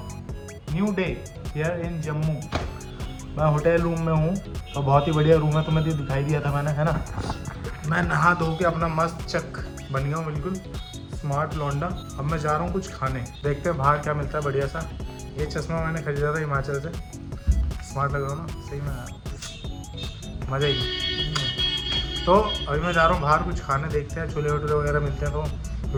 new day here in Jammu. मैं होटल रूम में हूँ और बहुत ही बढ़िया रूम है, तुम्हें तो दिखाई दिया था मैंने, है ना? मैं नहा धो के अपना मस्त चक बन गया हूँ, बिल्कुल स्मार्ट लौंडा। अब मैं जा रहा हूँ कुछ खाने, देखते हैं बाहर क्या मिलता है बढ़िया सा। ये चश्मा मैंने खरीदा था हिमाचल से, स्मार्ट लग रहा हूँ ना? सही में मज़ा ही। तो अभी मैं जा रहा हूँ बाहर कुछ खाने, देखते हैं छोले भटूरे वगैरह मिलते हैं तो,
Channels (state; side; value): identical; both; correlation 1.00